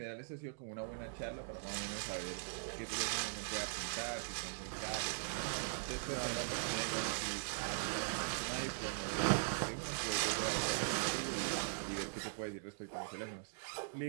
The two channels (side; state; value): left; silent; digital silence